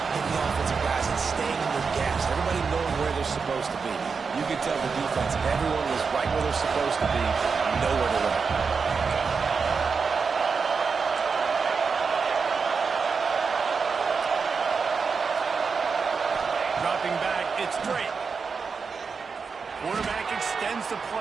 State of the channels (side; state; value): left; quieter; 5.3 dB